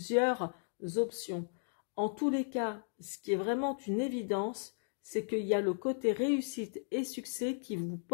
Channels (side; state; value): right; silent; digital silence